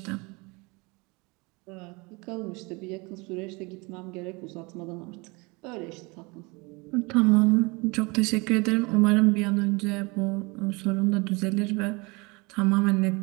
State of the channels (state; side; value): quieter; left; 26.8 dB